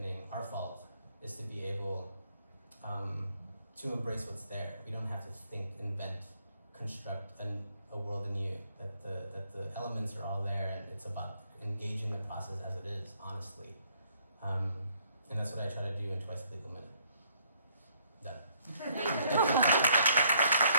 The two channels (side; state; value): both; inverted; correlation -0.67